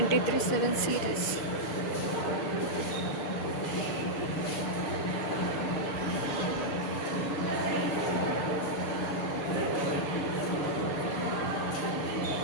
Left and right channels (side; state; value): right; late; 6.8 ms